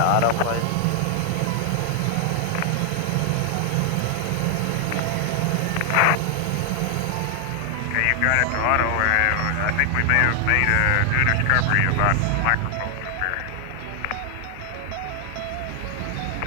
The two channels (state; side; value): different; both; correlation 0.00